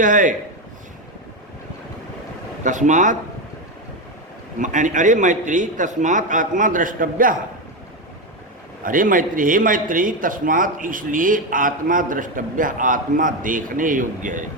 है। तस्मात् अरे मैत्री तस्मात् आत्मा द्रष्टव्य, अरे मैत्री हे मैत्री तस्मात् इसलिए आत्मा द्रष्टव्य, आत्मा देखने योग्य है।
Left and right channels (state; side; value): normal; both; correlation 0.12